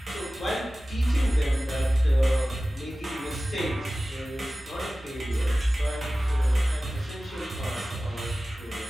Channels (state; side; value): normal; both; correlation 0.96